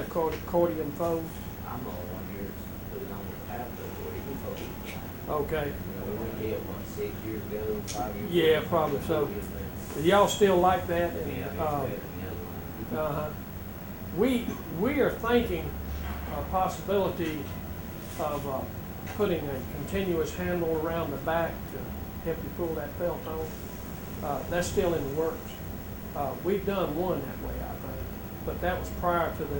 fold? I'm the only one here that's put it on the tablet where you can fold. Okay. We went there, what, 6 years ago, 5 years ago? Yeah, probably so. Y'all still like that? And, Yeah, it's better than the other one. we are thinking a possibility of putting a continuous handle around the back to help you pull that felt on. That's still in the works. We've done one that way, I think, but that was prior to the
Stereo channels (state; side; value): identical; both; correlation 1.00